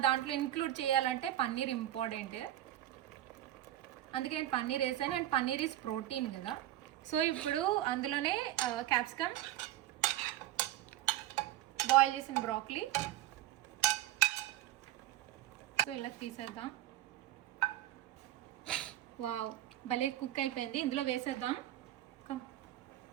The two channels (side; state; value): left; quieter; 14.1 dB